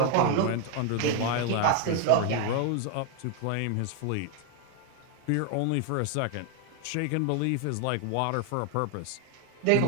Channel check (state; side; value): different; both; correlation 0.01